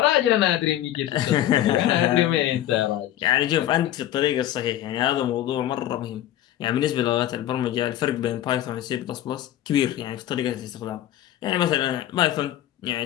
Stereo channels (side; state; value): right; quieter; 12.7 dB